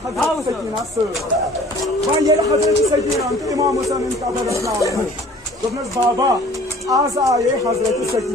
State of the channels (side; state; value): both; normal; correlation 0.50